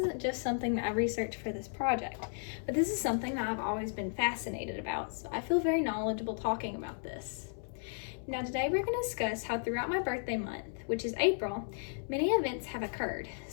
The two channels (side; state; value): right; silent; 55 dB below the other